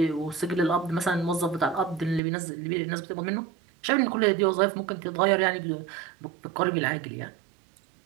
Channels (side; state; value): left; drops out; at 2.2 s